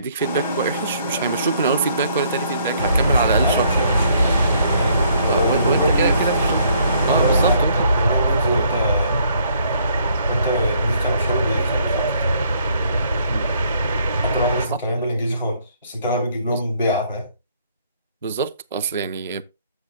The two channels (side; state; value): both; inverted; correlation -0.66